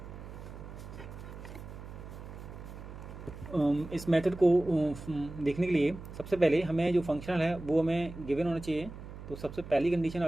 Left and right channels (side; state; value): right; noise; hum, 12 dB below the sound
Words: इस मेथड को देखने के लिए सबसे पहले हमें जो फंक्शनल है वो हमें गिवन होना चाहिए। तो सबसे पहली कंडीशन